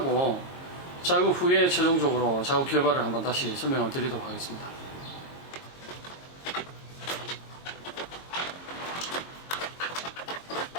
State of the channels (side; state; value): right; late; 22 ms